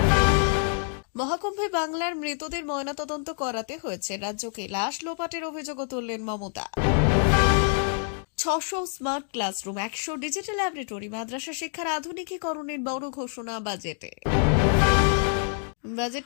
মহাকুম্ভে বাংলার মৃতদের ময়নাতদন্ত করাতে হয়েছে রাজ্যকে। লাশ লোপাটের অভিযোগও তুললেন Mamata. 600 smart classroom, 100 digital laboratory, মাদ্রাসা শিক্ষার আধুনিকীকরণের বড় ঘোষণা বাজেটে।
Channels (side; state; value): right; silent; 61 dB below the other